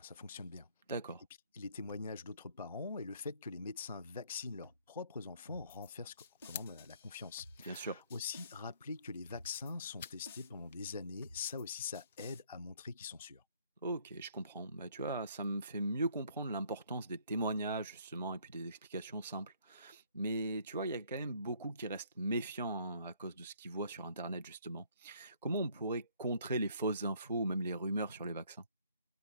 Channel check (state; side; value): inverted; both; correlation -0.62